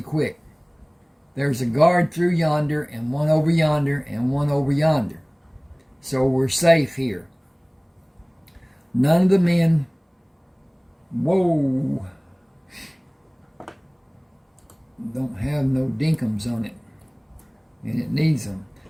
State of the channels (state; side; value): identical; both; correlation 1.00